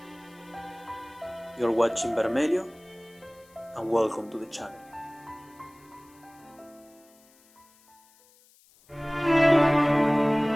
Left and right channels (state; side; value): noise; left; hiss, 29 dB below the sound